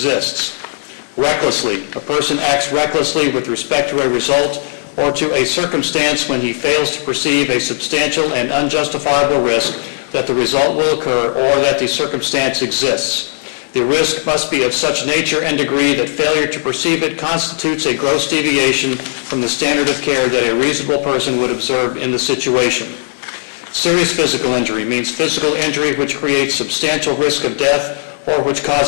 Recklessly, a person acts recklessly with respect to a result or to a circumstance when he fails to perceive a substantial and unjustifiable risk that the result will occur or that the circumstance exists. The risk must be of such nature and degree that failure to perceive it constitutes a gross deviation from the standard of care that a reasonable person would observe in the situation. Serious physical injury means physical injury which creates substantial risk of death or which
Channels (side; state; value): right; silent; 69 dB below the other